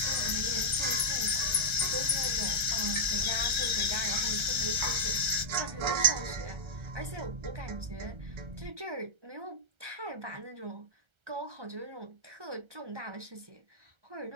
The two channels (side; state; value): left; late; 1.3 ms